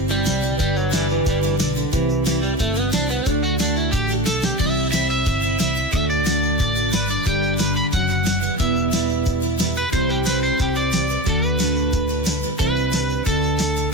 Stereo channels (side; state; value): both; normal; correlation 0.30